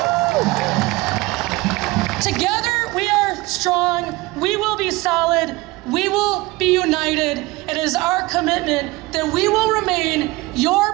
Together, we are strong. We will be solid. We will be united. It is our commitment that we will remain your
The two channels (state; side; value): quieter; left; 21.2 dB